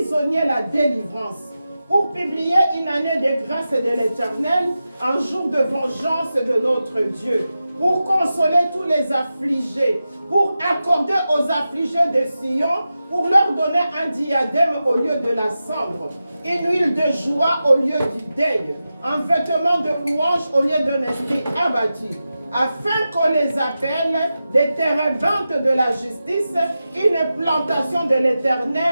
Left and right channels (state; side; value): inverted; both; correlation -0.92